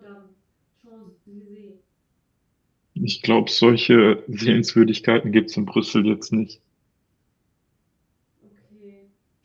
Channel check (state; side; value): identical; both; correlation 1.00